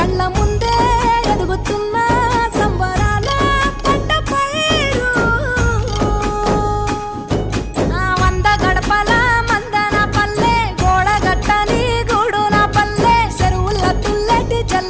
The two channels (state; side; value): identical; both; correlation 1.00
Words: కళ్ళ ముందే ఎదుగుతున్న సంబరాల పంట పైరు వంద గడపల మందన పల్లె గోడ గట్టని గూడు నా పల్లె చెరువుల తుల్లటి